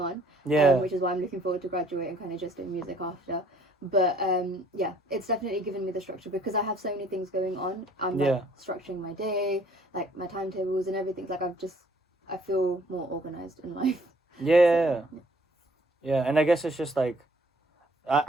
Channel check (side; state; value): both; normal; correlation 0.60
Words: on. Which is why I'm looking forward to graduate and kind of just doing music after. But it's definitely given me the structure, because I have so many things going on. I'm like structuring my day, like my timetables and everything. Like I feel more organized in life. Yeah, and I guess it's just like,